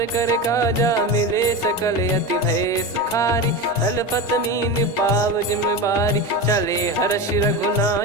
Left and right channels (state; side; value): normal; both; correlation 0.22